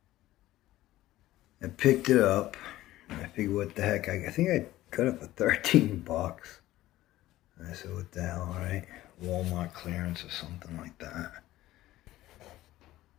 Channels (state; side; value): quieter; right; 15.6 dB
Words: I picked it up. I figured, what the heck? I think I got it for 13 bucks. I said, what the hell, right? Walmart clearance or something like that.